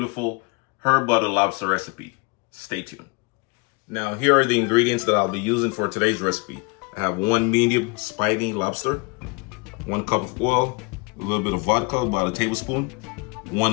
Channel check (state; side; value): quieter; right; 29.3 dB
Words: herb butter lobster recipe. Stay tuned. Now here are the ingredients that I'll be using for today's recipe. I have 1 medium spiny lobster, 1 cup of oil, a little bit of vodka, about a tablespoon,